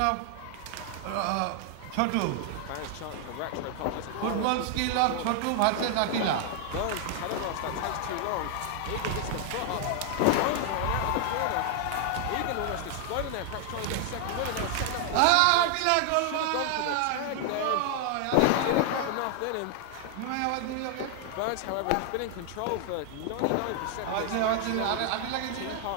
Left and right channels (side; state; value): both; different; correlation 0.00